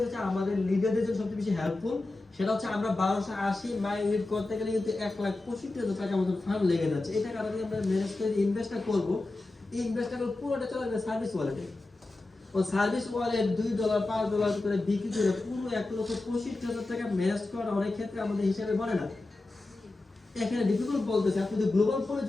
হচ্ছে আমাদের লিডারদের জন্য সবচেয়ে বেশি হেল্পফুল। সেটা হচ্ছে আমরা 1280 মাই ইউনিট করতে গেলে কিন্তু 1,65,000 টাকা মতো ফান্ড লেগে যাচ্ছে। এটা কারণে আমরা ম্যানেজ করে ইনভেস্টটা করব, এই ইনভেস্টটা করব পুরোটা চলে যাবে সার্ভিস ওয়ালেটে। ও সার্ভিস ওয়ালেট $2 $5 করে বিক্রি করে পুরো 1,65,000 টাকা ম্যানেজ করা অনেক ক্ষেত্রে আমাদের হিসাবে বলে না। এখানে ডিফিকাল্ট বলতেছে আপনি যদি গ্লোবাল পুলে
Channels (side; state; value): right; quieter; 3.0 dB